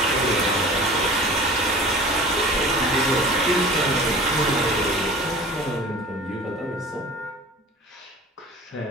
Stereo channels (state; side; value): normal; both; correlation 0.41